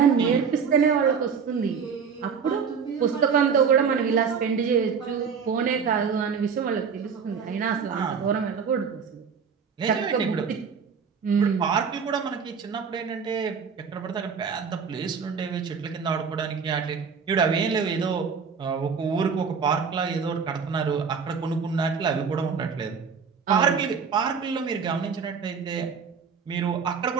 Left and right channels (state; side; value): quieter; left; 6.2 dB